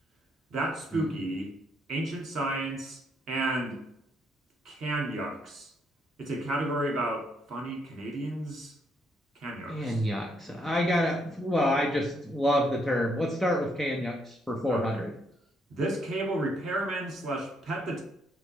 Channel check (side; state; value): both; normal; correlation 0.73